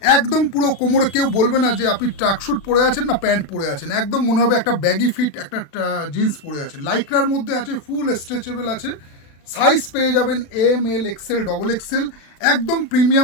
একদম পুরো কোমরে কেউ বলবে না যে আপনি ট্র্যাকশুট পরে আছেন না প্যান্ট পরে আছেন, একদম মনে হবে একটা ব্যাগি ফিট একটা জিন্স পরে আছেন। লাইক্রার মধ্যে আছে, ফুল স্ট্রেচেবল আছে, সাইজ পেয়ে যাবেন M L XL double XL, একদম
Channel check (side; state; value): right; late; 36 ms